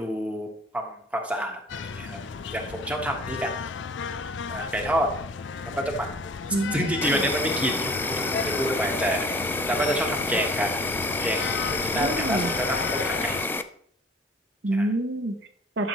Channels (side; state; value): both; normal; correlation 0.48